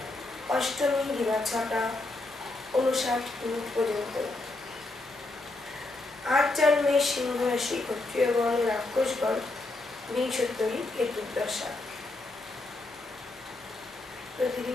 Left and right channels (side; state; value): right; quieter; 3.0 dB